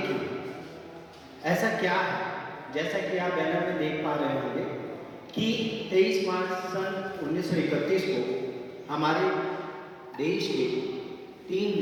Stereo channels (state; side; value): identical; both; correlation 1.00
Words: क्यों, ऐसा क्या है। जैसा कि आप बैनर में देख पा रहे होंगे कि 23 मार्च सन 1931 को हमारे देश के 3